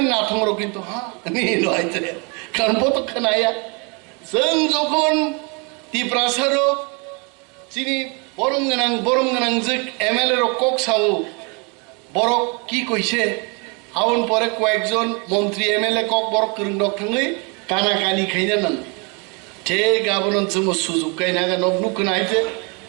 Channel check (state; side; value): quieter; left; 32.7 dB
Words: নাথং র কিন্তু হ্যাঁ নি লইতে কারণ বত খনায়া जों যখন তিপ্রাসারো চিনি বরম গানাং যে এমএলএ র কক সাও বড় কি কইছে আউন পরে কয়েকজন মন্ত্রী এমএলএ কক বড় করং ডক থাঙ্গই কানা কানি খাইনা নান তে গাবনন जों সুযোগ কাইনা গা নবনু কনাইতে